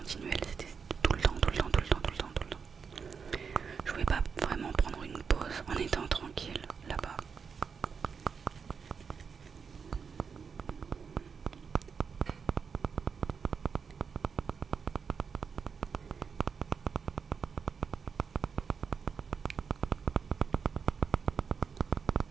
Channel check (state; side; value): quieter; left; 6.0 dB